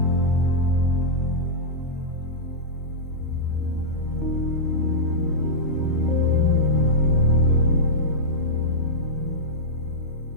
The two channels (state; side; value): normal; both; correlation -0.11